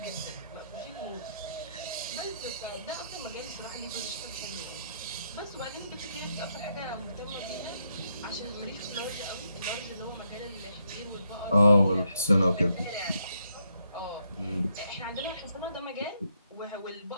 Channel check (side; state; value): both; inverted; correlation -0.77